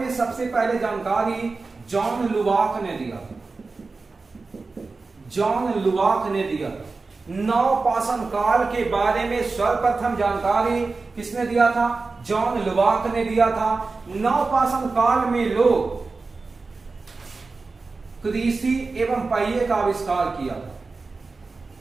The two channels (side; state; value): left; quieter; 3.9 dB